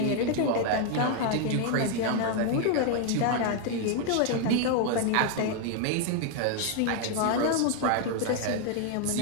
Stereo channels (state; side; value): different; both; correlation 0.00